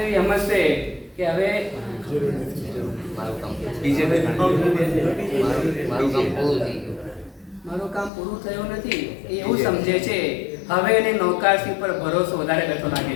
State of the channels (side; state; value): right; drops out; at 8.1 s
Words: સમજશે કે હવે મારું કામ પૂરું થયું નથી. એ એવું સમજે છે. હવે એને નૌકારસી પર ભરોસો વધારે બેઠો લાગે